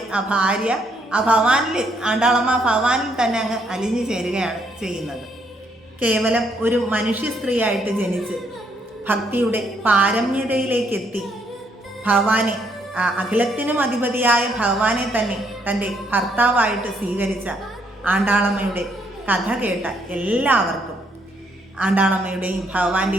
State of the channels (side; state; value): both; normal; correlation 0.71